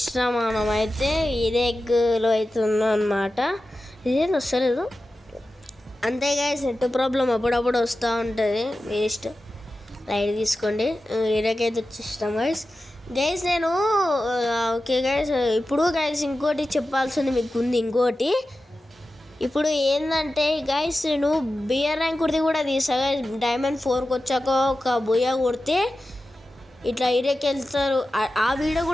మనమైతే ఈరెగ్లో అయితే ఉన్నాం అనమాట ఇదేం వస్తలేదు అంతే గైస్ నెట్ ప్రాబ్లం అప్పుడప్పుడు వస్తూ ఉంటుంది వేస్ట్ లైట్ తీసుకోండి ఈరకైతే వచ్చేసినాం గైస్ నేను ఓకే గైస్ ఇప్పుడు గైస్ ఇంకోటి చెప్పాల్సింది మీకు ఉంది ఇంకోటి ఇప్పుడు ఏంటంటే గైస్ నేను బియర్ ర్యాంక్ కుడితే కూడా తీసా గైస్ డైమండ్ 4కి వచ్చాక ఒక బుయ్య కొడితే ఇట్లా ఇరేకి వెళ్తారు ఆ వీడియో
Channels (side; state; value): both; normal; correlation 0.93